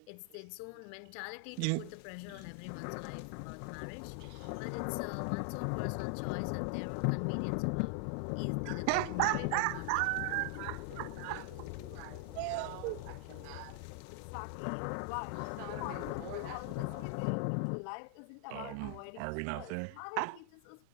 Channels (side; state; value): both; different; correlation 0.00